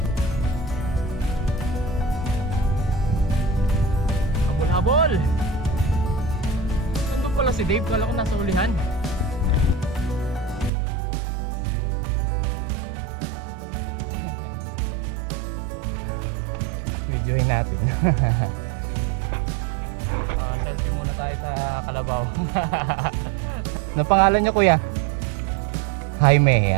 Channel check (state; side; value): drops out; left; at 10.7 s